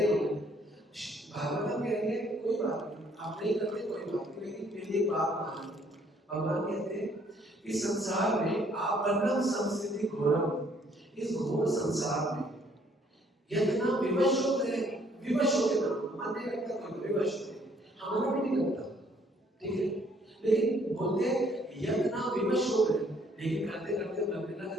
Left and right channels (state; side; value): normal; both; correlation 0.64